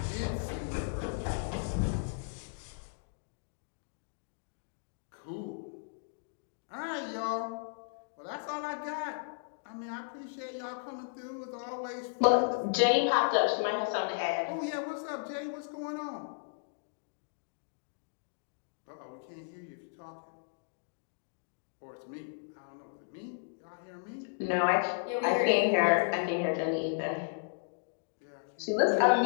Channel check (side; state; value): right; silent; digital silence